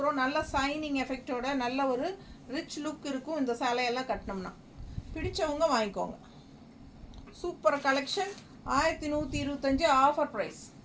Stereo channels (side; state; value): both; identical; correlation 1.00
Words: நல்ல சைனிங் எஃபெக்டோட நல்ல ஒரு ரிச் லுக் இருக்கும் இந்த சேலையெல்லாம் கட்டினோம்னா. பிடிச்சவங்க வாங்கிக்கோங்க. Super collection 1125 offer price.